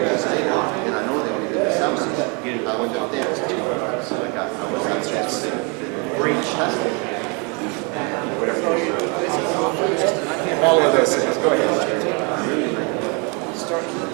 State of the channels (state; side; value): quieter; left; 32.6 dB